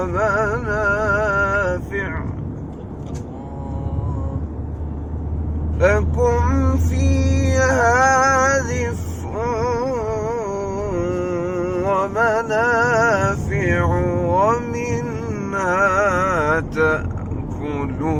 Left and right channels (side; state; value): both; identical; correlation 1.00